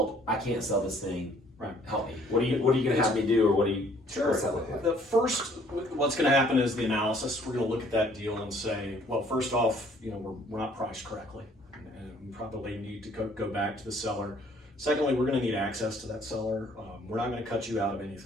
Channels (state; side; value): normal; both; correlation 0.60